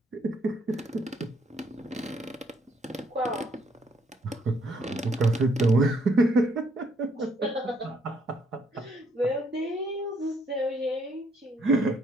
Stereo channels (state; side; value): normal; both; correlation 0.69